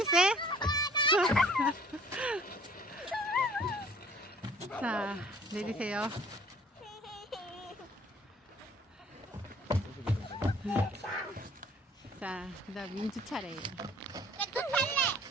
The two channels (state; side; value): normal; both; correlation 0.54